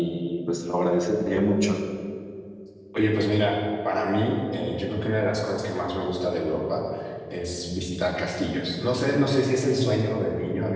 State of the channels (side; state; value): both; identical; correlation 1.00